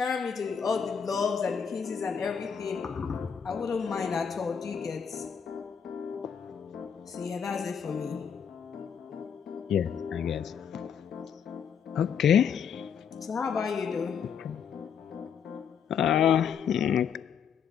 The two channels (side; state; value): right; quieter; 7.3 dB